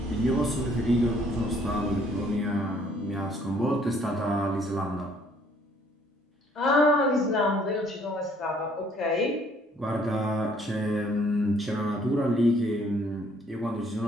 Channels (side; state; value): both; normal; correlation 0.62